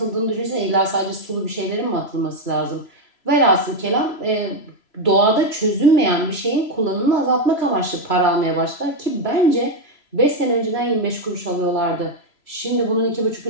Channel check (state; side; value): late; right; 3.0 ms